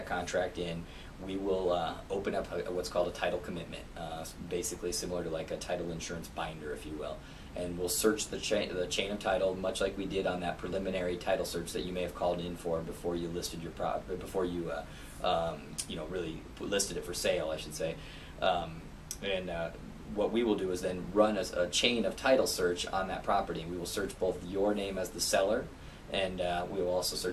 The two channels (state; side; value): identical; both; correlation 1.00